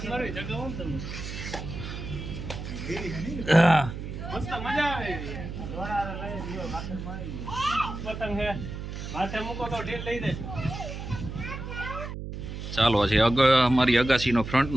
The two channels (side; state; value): right; noise; hum, 7 dB below the sound